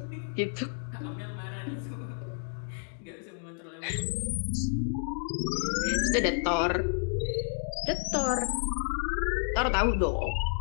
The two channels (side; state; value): right; silent; 55 dB below the other